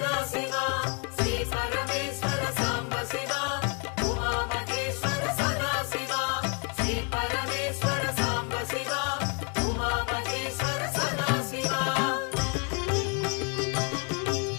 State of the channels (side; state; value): right; quieter; 37.5 dB